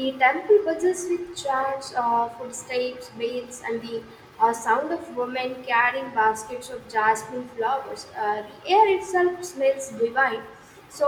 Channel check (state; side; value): identical; both; correlation 1.00